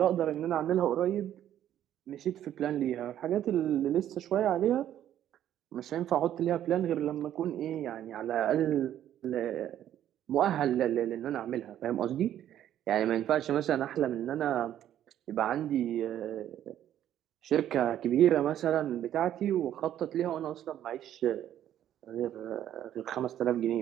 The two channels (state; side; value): quieter; left; 11.3 dB